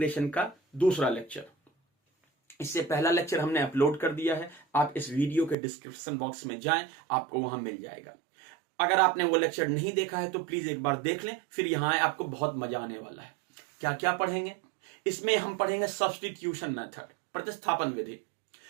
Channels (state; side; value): drops out; left; at 5.6 s